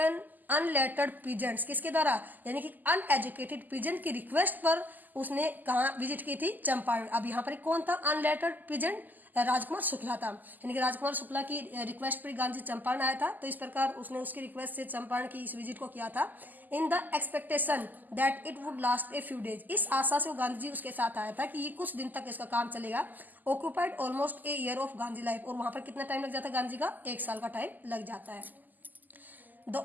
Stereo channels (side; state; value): left; late; 0.085 ms